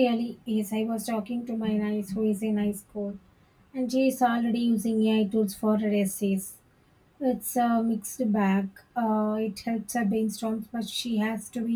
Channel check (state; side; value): identical; both; correlation 1.00